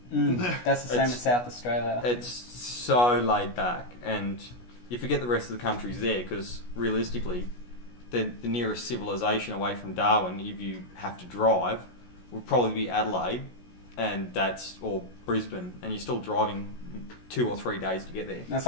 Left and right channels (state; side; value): late; right; 16 ms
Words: That's the same as South Australia. It's so laid back, and you forget the rest of the country's there, because realistically, the nearest civilization away from Darwin, if you have to drive, would probably be Adelaide, and or Brisbane, and you're still driving 2 or 3 days to get there. That's